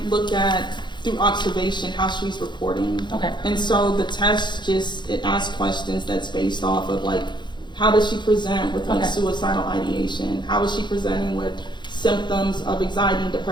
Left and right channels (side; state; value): right; late; 0.22 ms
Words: look at, through observation, how she's reporting. Okay. And so the test it asks questions that's based off of how does she present with suicidal ideation? How is she presenting with symptoms of anxiety and